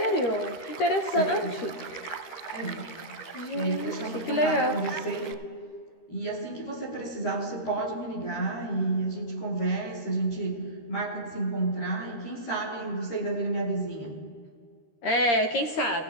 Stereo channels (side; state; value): right; late; 13 ms